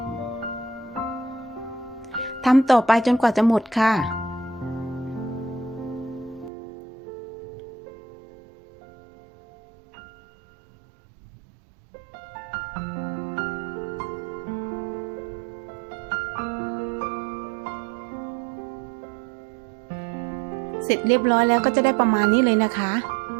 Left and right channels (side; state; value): left; drops out; at 6.5 s